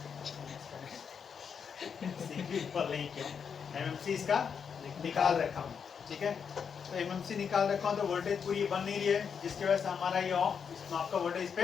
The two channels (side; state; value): right; quieter; 6.7 dB